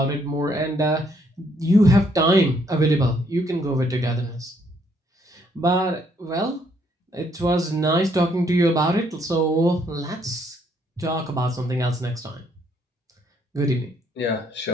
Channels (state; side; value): normal; both; correlation 0.69